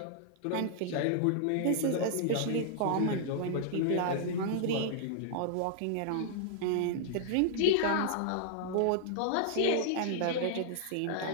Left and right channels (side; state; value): both; different; correlation -0.01